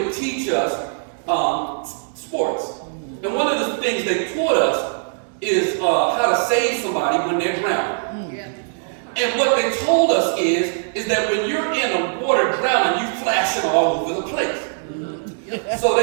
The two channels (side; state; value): left; silent; digital silence